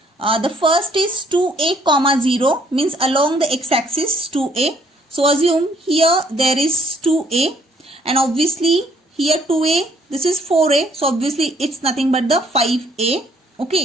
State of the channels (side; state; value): both; normal; correlation 0.65